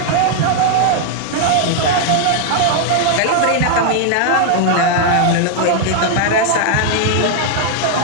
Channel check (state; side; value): different; both; correlation 0.00